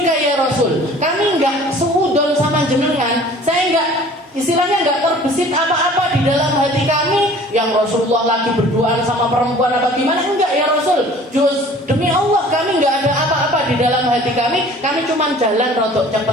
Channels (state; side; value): normal; both; correlation 0.48